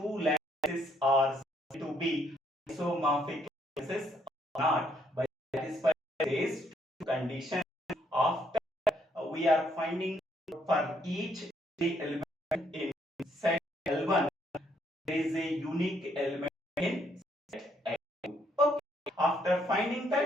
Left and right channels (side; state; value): both; normal; correlation 0.71